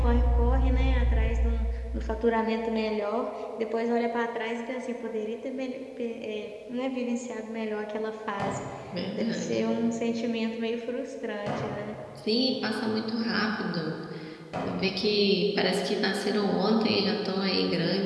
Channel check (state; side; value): identical; both; correlation 1.00